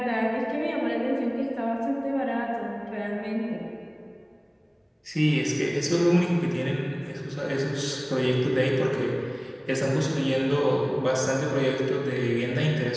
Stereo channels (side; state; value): both; identical; correlation 1.00